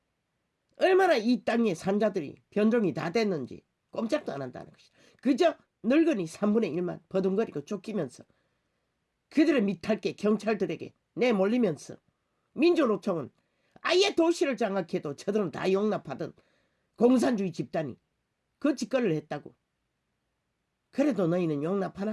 얼마나 이 땅의 산자들이 변종이 다 됐는지 꼼짝도 안 한다는 것이다. 그저 늙은이 3분의 1만 버둥거리고 쫓기면서 그들의 밑할게 경찰들에게 내몰리면서 민주노총은 아예 도시를 장악해도 저들은 다 용납하던 공산주의 집단이 그 짓거리를 했다고. 그래도 너희는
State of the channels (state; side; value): identical; both; correlation 1.00